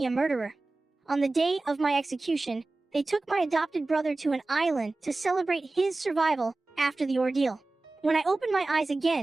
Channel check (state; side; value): quieter; left; 3.2 dB